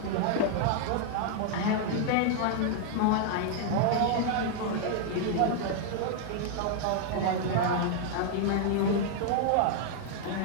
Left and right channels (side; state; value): both; different; correlation 0.00